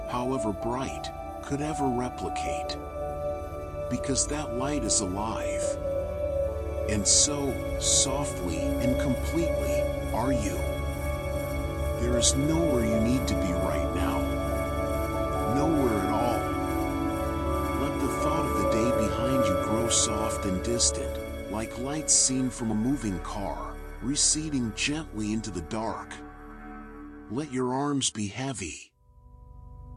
however bright, could ever replicate. Because that light is alive. And so, softly and completely, are you. There is nowhere you need to be right now. Nowhere at all. Let the thought of the day behind you grow soft and distant, like lights seen from a moving car, receding gently into the dark. Let your arms be heavy.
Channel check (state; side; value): identical; both; correlation 1.00